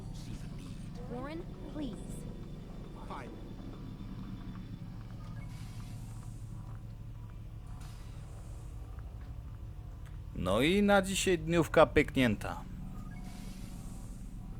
see the need. Warren, please. Fine. No i na dzisiaj dniówka pyknięta.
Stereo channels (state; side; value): identical; both; correlation 1.00